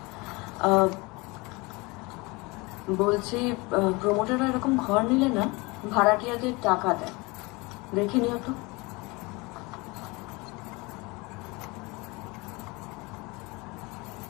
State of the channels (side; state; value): right; quieter; 25.3 dB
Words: বলছি প্রমোটাররা এরকম ঘর নিলে না ভাড়াটিয়াদের টাকা দেয়, দেখে নিও তো।